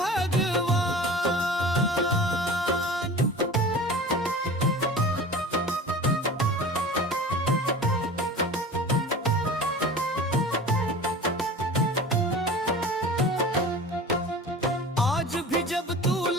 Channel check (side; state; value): both; normal; correlation 0.38